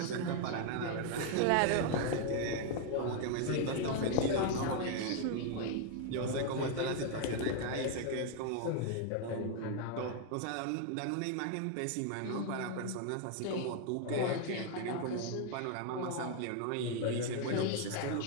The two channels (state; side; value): different; both; correlation 0.01